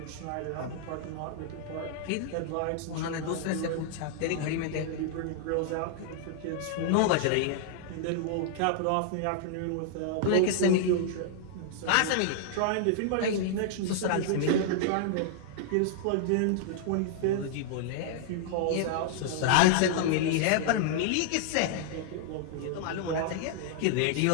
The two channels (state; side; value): different; both; correlation -0.01